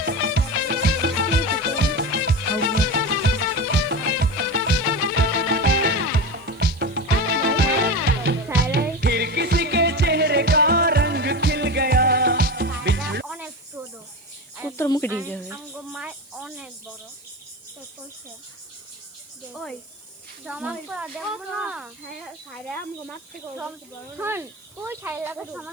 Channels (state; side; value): noise; right; hiss, 30 dB below the sound